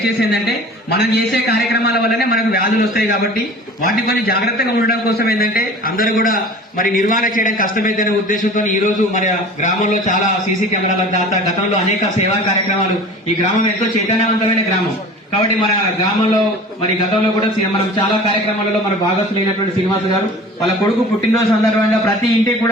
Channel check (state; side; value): normal; both; correlation 0.41